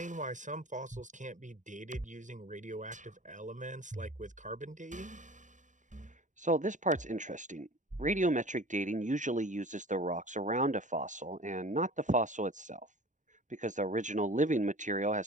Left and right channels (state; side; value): late; left; 0.36 ms